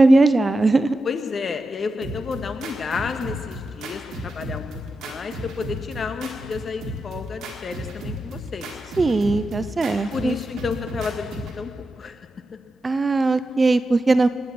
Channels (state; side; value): normal; both; correlation 0.89